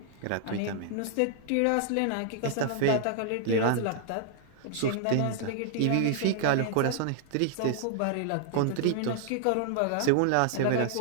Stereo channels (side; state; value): both; different; correlation -0.01